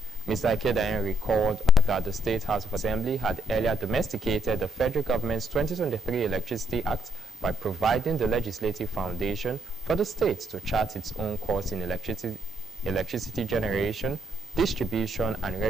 Mr. Ekedayen recalled that the State House of Assembly had earlier domesticated the federal government's 2023 Electricity Act by providing the legislative foundation for the state to chart its own course in electricity generation, distribution, and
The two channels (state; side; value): normal; both; correlation 0.73